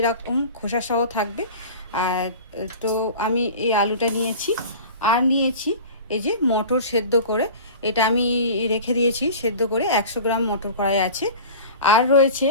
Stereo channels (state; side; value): inverted; both; correlation -0.37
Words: খোসা সহ থাকবে। আর তো আমি এই আলুটা নিয়েছি। আর নিয়েছি এই যে মটর সেদ্ধ করে, এটা আমি রেখে দিয়েছি সেদ্ধ করে, 100 গ্রাম মটর কড়াই আছে। আর রয়েছে